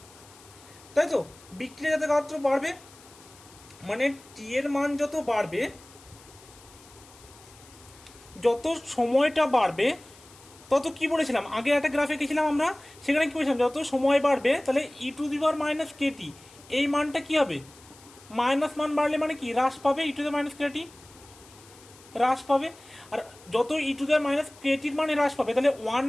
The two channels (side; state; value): left; noise; hiss, 23 dB below the sound